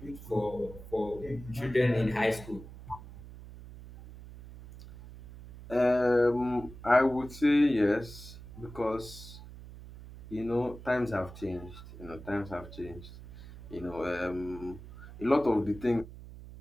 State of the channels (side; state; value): right; noise; hum, 15 dB below the sound